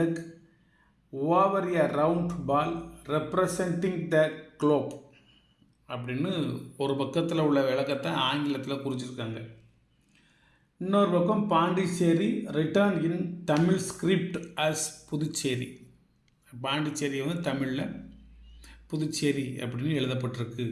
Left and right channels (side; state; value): both; identical; correlation 1.00